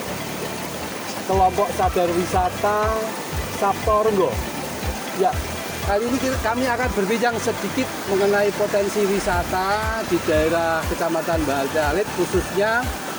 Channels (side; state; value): both; identical; correlation 1.00